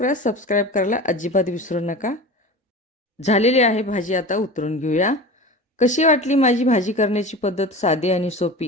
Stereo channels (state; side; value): normal; both; correlation 0.33